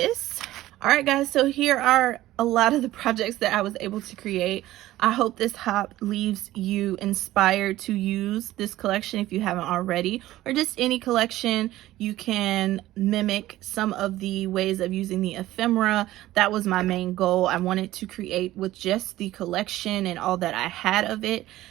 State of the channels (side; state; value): left; quieter; 15.6 dB